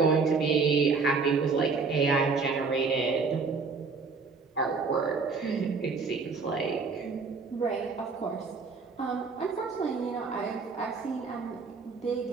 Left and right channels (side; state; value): left; quieter; 4.7 dB